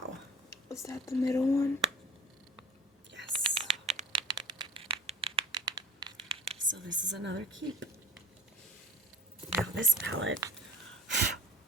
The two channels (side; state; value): both; normal; correlation 0.41